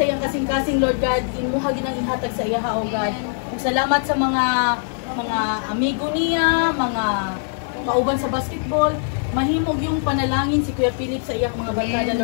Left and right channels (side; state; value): right; silent; 57 dB below the other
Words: iyang kasing-kasing Lord God, imuha ginang ihatag sa iya o God. Ug salamat sa mga amigo niya, mga kauban sa basketball, mahimog yung panalangin si Kuya Philip sa iyang mga barkada